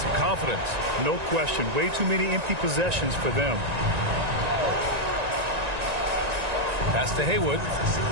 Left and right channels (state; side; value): late; left; 1.9 ms